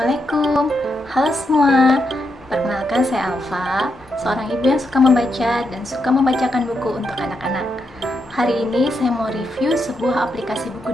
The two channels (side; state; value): both; normal; correlation 0.82